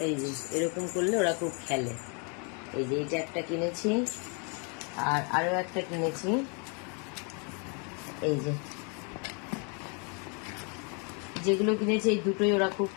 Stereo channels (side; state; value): right; quieter; 36.3 dB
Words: এই যে এরকম করলে ওরা খুব খেলে। এই যে এইটা একটা কিনেছি, আর আরো একটা কিনেছি। এই যে যেগুলো কিনেছি এই দুটোই ওরা খুব